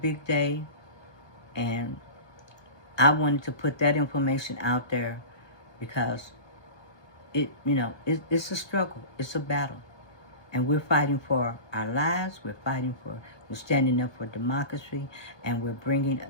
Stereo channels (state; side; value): late; right; 1.2 ms